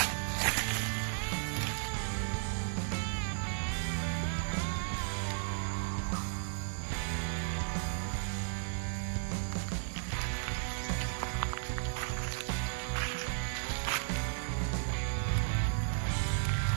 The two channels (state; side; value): silent; left; digital silence